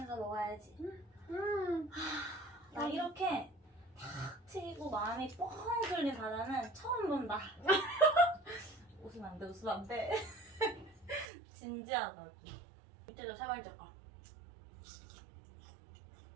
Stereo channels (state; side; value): drops out; left; at 11.2 s